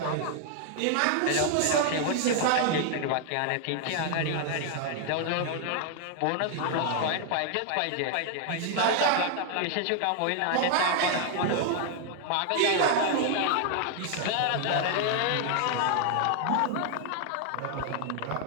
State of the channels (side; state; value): both; different; correlation 0.00